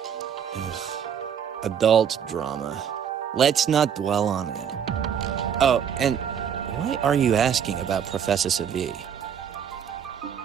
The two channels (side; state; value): left; quieter; 8.2 dB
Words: Ugh. Adult drama. Let's not dwell on it. Oh, and why are you asking about Professor Savi?